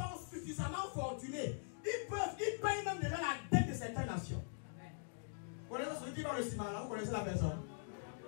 suffisamment fortunés. Ils payent même déjà la dette de certaines nations. Vous connaissez celui qui va le ciment là? Vous connaissez la personne?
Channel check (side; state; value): right; silent; digital silence